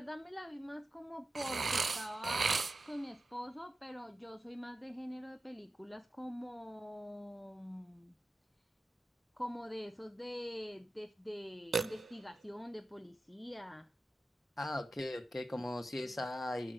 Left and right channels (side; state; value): both; normal; correlation 0.93